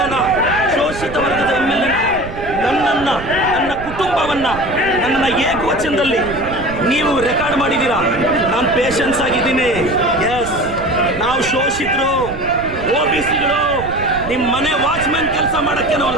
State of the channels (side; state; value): right; noise; rumble, 11 dB below the sound